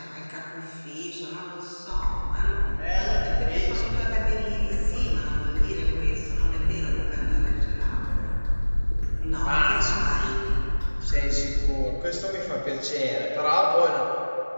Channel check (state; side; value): inverted; both; correlation -1.00